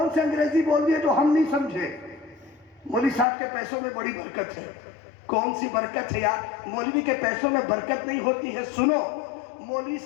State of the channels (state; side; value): drops out; right; at 3.2 s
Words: سے انگریزی بول دیے جو ہم نہیں سمجھے؟ مولوی صاحب کے پیسوں میں بڑی برکت ہے۔ کون سی برکت ہے یار؟ مولوی کے پیسوں میں برکت نہیں ہوتی ہے۔ سنو، مولوی